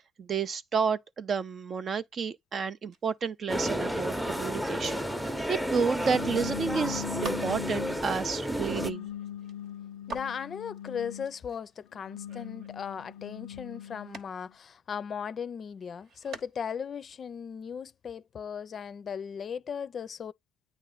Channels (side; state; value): both; normal; correlation 0.74